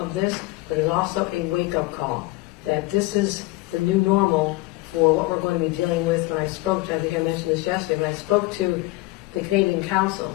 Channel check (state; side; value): quieter; right; 21.2 dB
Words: this, but it's also a wake-up call that this is the new normal for what we're going to be dealing with. When I spoke to, I think I mentioned this yesterday, when I spoke to the Canadian